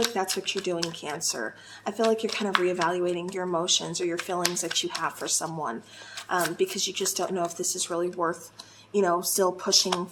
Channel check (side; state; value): both; identical; correlation 1.00